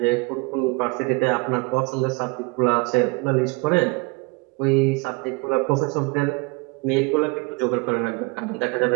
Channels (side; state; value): left; quieter; 27.6 dB